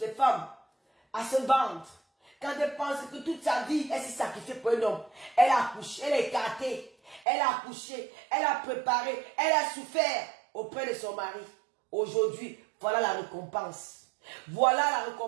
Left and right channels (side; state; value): left; drops out; at 7.2 s